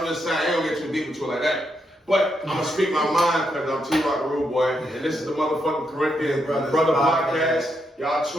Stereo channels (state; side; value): normal; both; correlation 0.80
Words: just saying, I ain't gonna get too deep into it like that. But I'm gonna speak my mind because I'm T-Rock the Rude Boy, and this is the motherfucking Corinthians Brother Podcast. Y'all